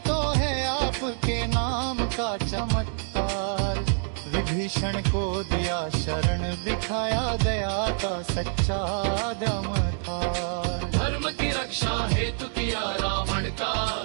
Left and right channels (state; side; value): silent; left; 61 dB below the other